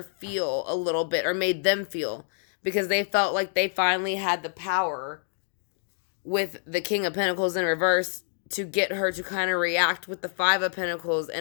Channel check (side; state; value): right; silent; digital silence